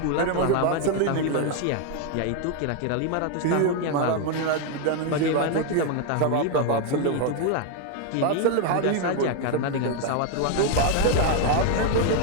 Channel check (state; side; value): different; both; correlation 0.01